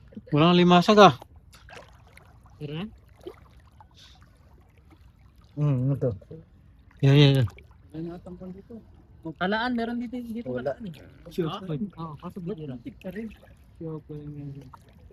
Walang alimasag ah. Tira? Ano to? Yan. May natampang dito. Talaan, meron dito Wala. talaan eh. Sure. Oo, kaso bigla. Tik ka rin.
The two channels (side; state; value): both; identical; correlation 1.00